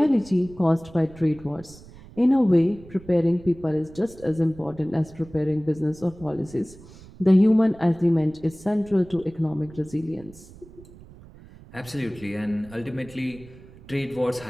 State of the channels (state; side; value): noise; right; rumble, 20 dB below the sound